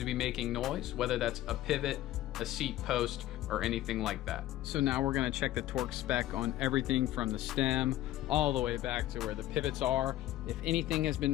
be making noise, whether that's a pivot, a seat post, or anything like that. So now we're gonna check the torque spec on everything from the stem all the way back to where the pivots are. If anything has been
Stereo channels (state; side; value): quieter; right; 14.3 dB